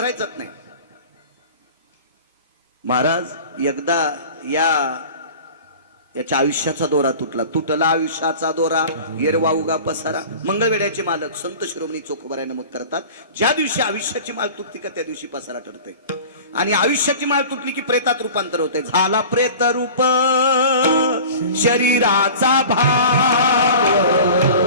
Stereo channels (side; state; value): both; inverted; correlation -0.40